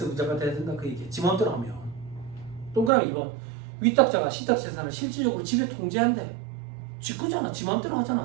돼야 된다 그 얘기야. 지 마음대로 하면. 동그라미 2번 위탁자가 신탁재산을 실질적으로 지배 통제한대. 지 거잖아. 지 마음대로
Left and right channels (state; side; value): drops out; left; at 2.9 s